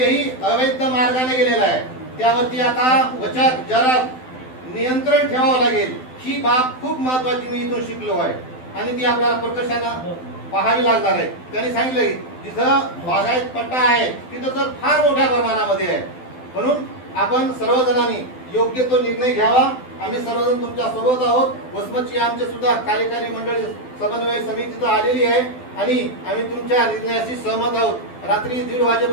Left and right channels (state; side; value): late; right; 12 ms